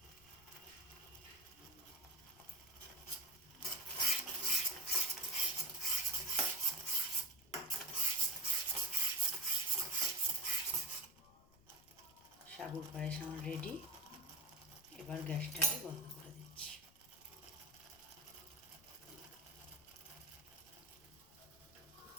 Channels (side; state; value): left; noise; rumble, 26 dB below the sound